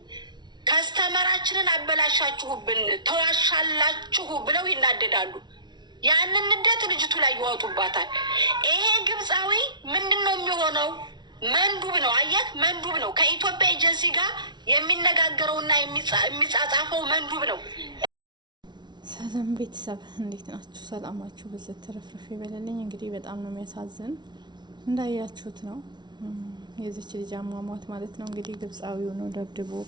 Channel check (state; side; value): late; left; 0.21 ms